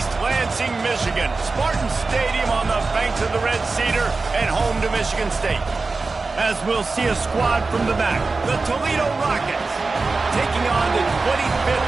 Lansing, Michigan. Spartan Stadium on the banks of the Red Cedar and home to Michigan State. As we'll see a squad from the back, the Toledo Rockets, taking on the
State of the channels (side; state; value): left; quieter; 3.9 dB